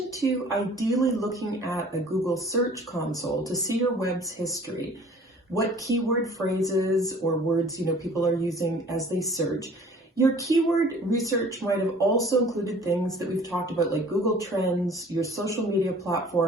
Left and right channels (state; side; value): normal; both; correlation 0.50